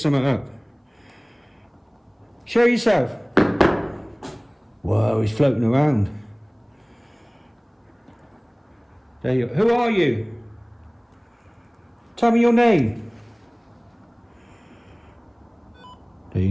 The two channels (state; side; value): identical; both; correlation 1.00